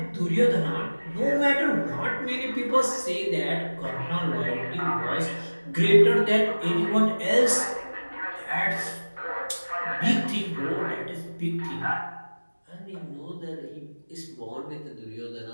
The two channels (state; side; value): inverted; both; correlation -1.00